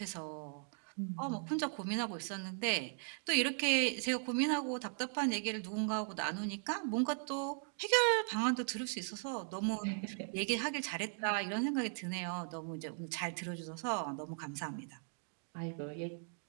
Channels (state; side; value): silent; left; 52 dB below the other